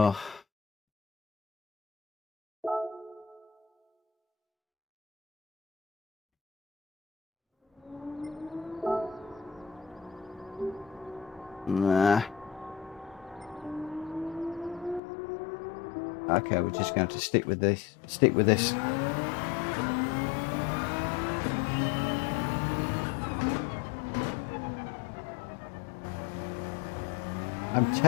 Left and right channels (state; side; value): drops out; right; at 15.0 s